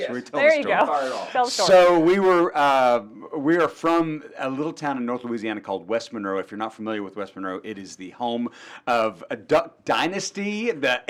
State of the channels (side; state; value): both; identical; correlation 1.00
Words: We tell There the you story. go. Tell the story. So we are from a little town in North Louisiana called West Monroe. If you're not familiar with West Monroe, it is the home of a Duck Dynasty, the